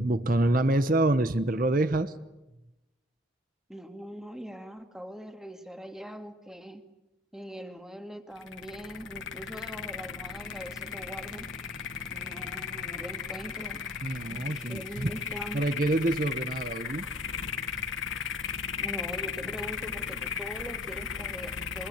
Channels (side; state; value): both; normal; correlation 0.56